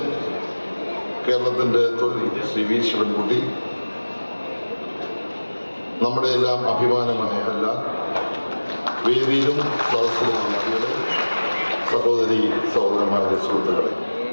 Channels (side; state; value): both; inverted; correlation -1.00